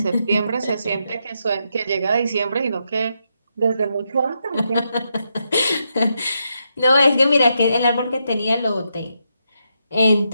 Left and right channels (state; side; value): inverted; both; correlation -0.82